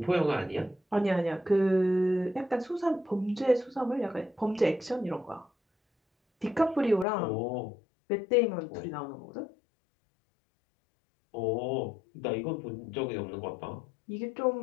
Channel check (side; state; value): right; drops out; at 7.1 s